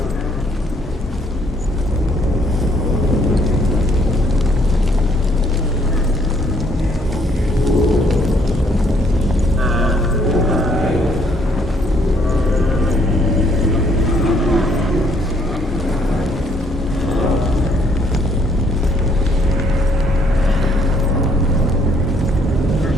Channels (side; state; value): both; normal; correlation 0.66